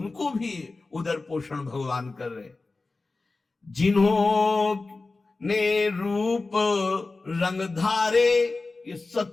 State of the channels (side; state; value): right; quieter; 3.6 dB